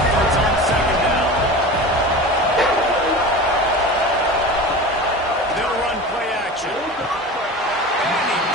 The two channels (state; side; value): normal; both; correlation 0.32